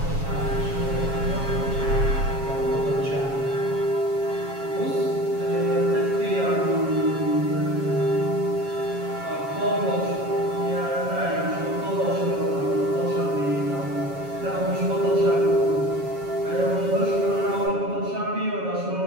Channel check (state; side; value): late; left; 7.3 ms